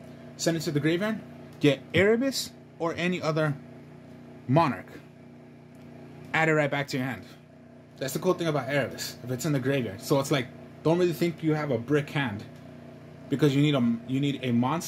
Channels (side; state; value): both; identical; correlation 1.00